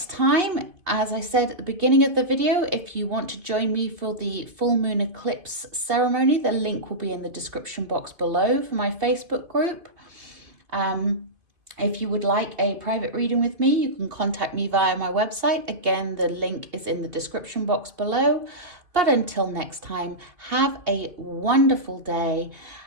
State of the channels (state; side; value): late; left; 2.8 ms